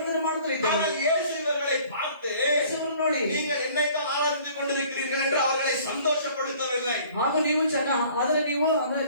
ಮಾಡುತ್ತಿದ್ದರು. ஆனால் இயேசு இவர்களை பார்த்து ನೋಡಿ, நீங்கள் என்னைத்தான் ஆராதித்துக் கொண்டிருக்கிறீர்கள் என்று அவர்களை சந்தோஷப்படுத்தவில்லை. ಹಾಗೂ ನೀವು ಅಂದ್ರೆ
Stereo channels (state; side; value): inverted; both; correlation -0.53